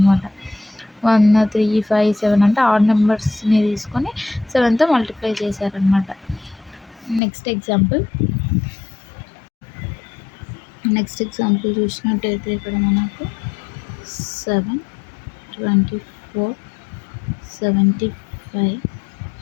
1 3 5 7 అంటే ఆడ్ నెంబర్స్ని తీసుకొని 7తో మల్టిప్లై చేశారనమాట. నెక్స్ట్ ఎగ్జాంపుల్ చూసినట్టయితే ఇక్కడ మనకు 7 24 75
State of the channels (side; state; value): right; drops out; at 7.2 s